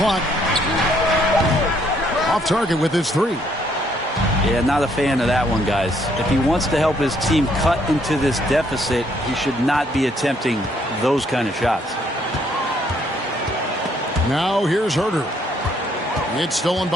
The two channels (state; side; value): normal; both; correlation 0.68